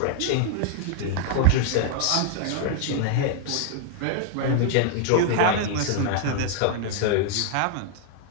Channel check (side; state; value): both; different; correlation 0.00